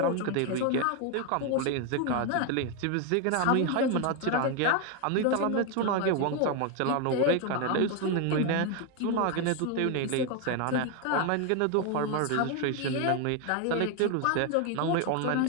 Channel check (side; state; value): both; different; correlation 0.01